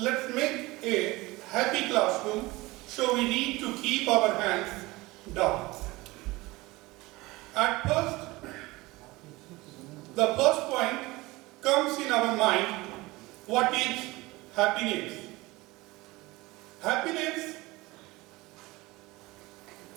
make a happy classroom, so we need to keep our hands down. At first, the first point comes in our mind, what is happiness? Happiness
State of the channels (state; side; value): quieter; left; 21.2 dB